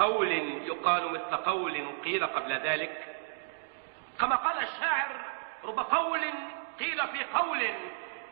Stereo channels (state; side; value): silent; left; digital silence